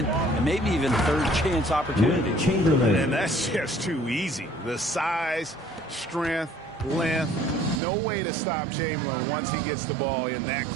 and maybe even third chance opportunities. And that's just too easy. The size, strength, length, no way to stop Chamberlain once he gets the ball in that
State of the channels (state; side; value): drops out; left; at 7.8 s